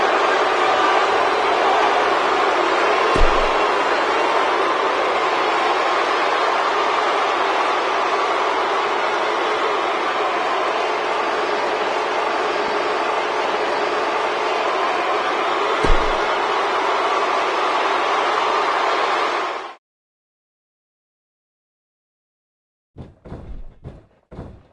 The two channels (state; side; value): identical; both; correlation 1.00